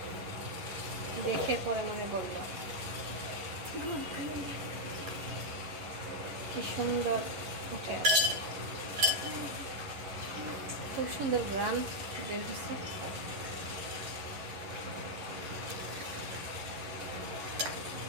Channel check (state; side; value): late; left; 11 ms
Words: দেখে পরে মনে পড়লো। কি সুন্দর উঠে আছে, খুব সুন্দর গ্রাম বের হচ্ছে।